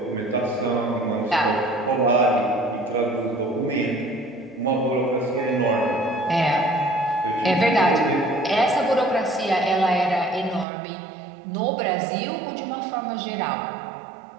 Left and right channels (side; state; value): left; drops out; at 10.7 s